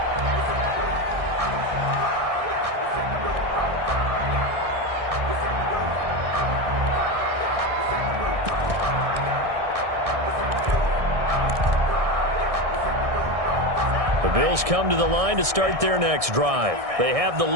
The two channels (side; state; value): left; late; 1.6 ms